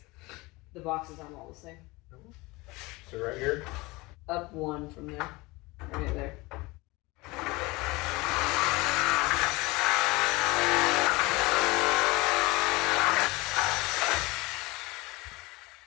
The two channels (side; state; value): right; quieter; 23.0 dB